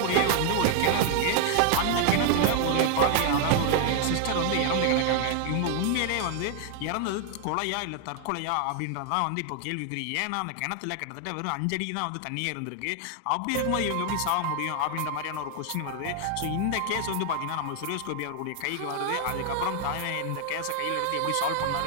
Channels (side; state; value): both; different; correlation 0.00